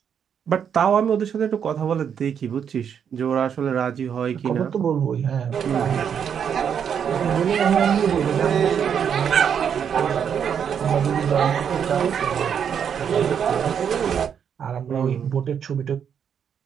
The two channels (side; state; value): left; quieter; 7.8 dB